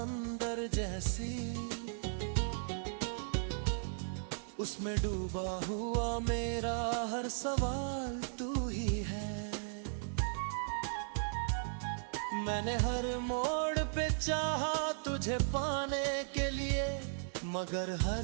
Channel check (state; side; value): silent; left; digital silence